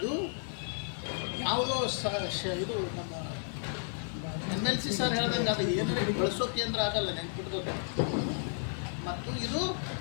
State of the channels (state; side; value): silent; right; 56 dB below the other